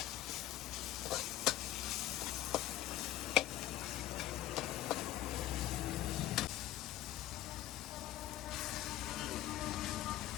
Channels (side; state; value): right; quieter; 14.0 dB